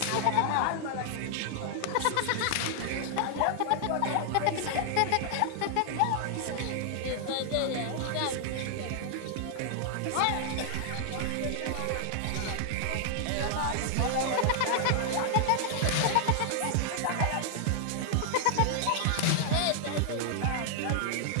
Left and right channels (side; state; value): both; different; correlation 0.00